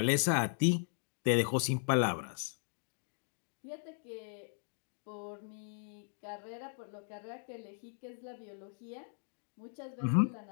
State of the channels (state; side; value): silent; right; digital silence